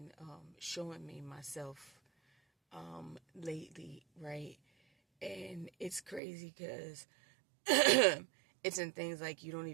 showing me myself lately, right? And it's crazy because it's in things like you don't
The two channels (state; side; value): drops out; left; at 6.2 s